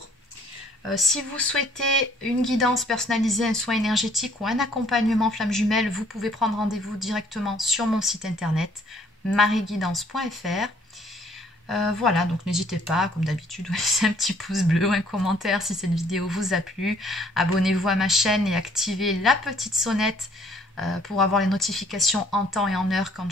Si vous souhaitez une guidance personnalisée, un soin énergétique ou un accompagnement flamme jumelle, vous pouvez prendre rendez-vous directement sur mon site internet marieguidance.fr. Voilà, donc n'hésitez pas, comme d'habitude, à laisser un petit pouce bleu ou un commentaire si cette vidéo vous a plu. Abonnez-vous à ma chaîne et activez la petite sonnette pour avoir les notifications en temps et en heure quand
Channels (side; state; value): both; normal; correlation 0.61